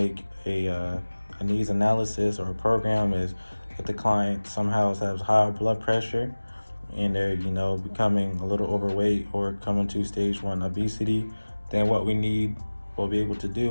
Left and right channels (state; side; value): inverted; both; correlation -1.00